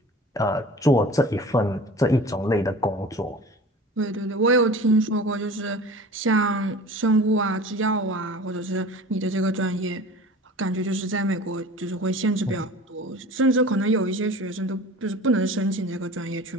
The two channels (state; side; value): normal; both; correlation 0.40